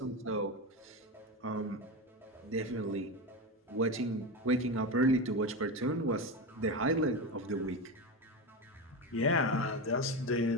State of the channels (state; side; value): normal; both; correlation 0.18